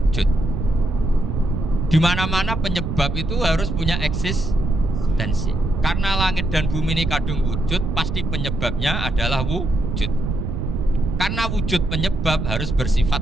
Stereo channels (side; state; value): right; noise; rumble, 2 dB below the sound